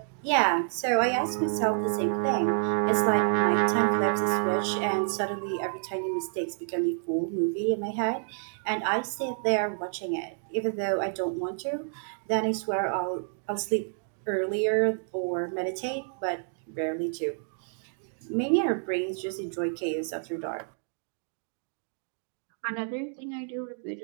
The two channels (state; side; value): silent; left; 57 dB below the other